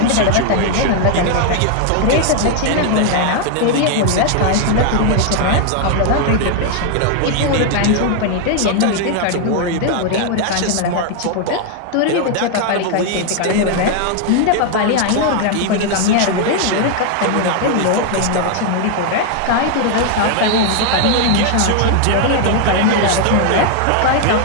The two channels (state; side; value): different; both; correlation 0.00